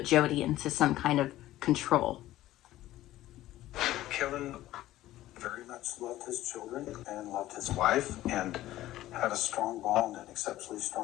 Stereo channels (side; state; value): right; quieter; 15.1 dB